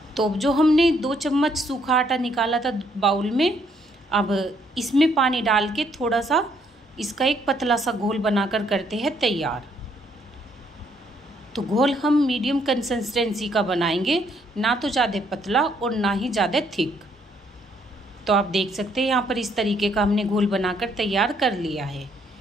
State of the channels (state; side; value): normal; both; correlation 0.69